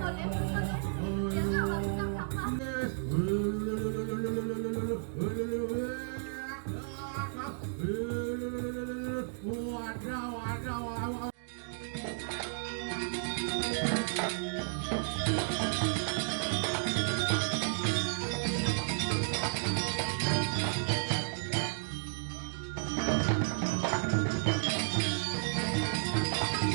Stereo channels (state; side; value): silent; left; digital silence